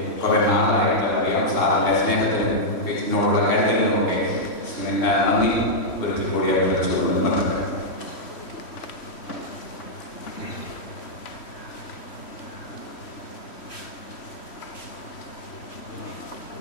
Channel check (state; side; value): late; right; 3.1 ms